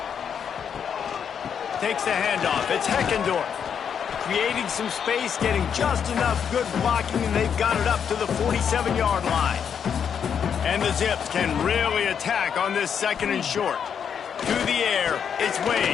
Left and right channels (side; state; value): right; quieter; 7.6 dB